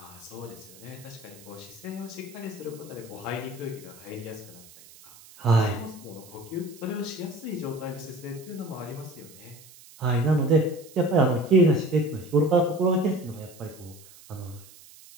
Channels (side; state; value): right; noise; hiss, 21 dB below the sound